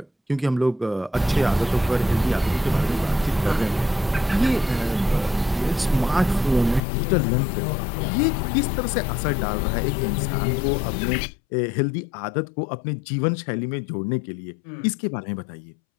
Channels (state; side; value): drops out; right; at 6.8 s